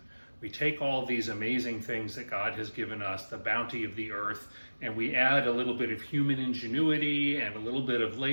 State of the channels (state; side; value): inverted; both; correlation -1.00